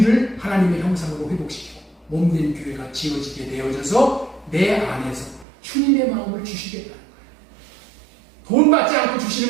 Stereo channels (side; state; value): left; drops out; at 5.5 s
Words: 하나님의 형상으로 회복시키고 몸된 교회가 지어지게 되어져서 내 안에서 주님의 마음을 주시겠다는 거예요. 돈 받지 않고